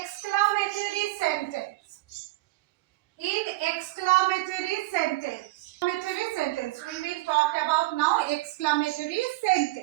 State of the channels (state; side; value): quieter; left; 20.0 dB